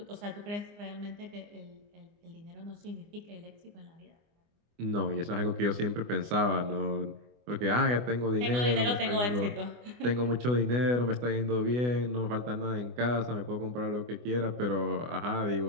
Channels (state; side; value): late; left; 24 ms